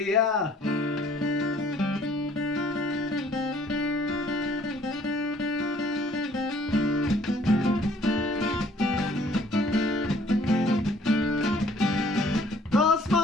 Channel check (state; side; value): normal; both; correlation 0.58